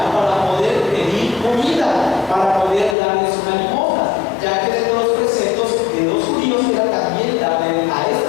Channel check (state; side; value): drops out; right; at 3.0 s